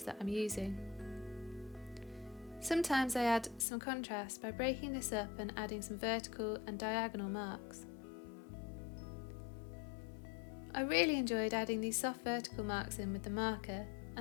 that I'm using. Sometimes I add some contrast by breaking this up and adding some vertical and diagonal marks. I really enjoyed adding these soft vertical marks in with the marker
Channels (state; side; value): drops out; right; at 3.7 s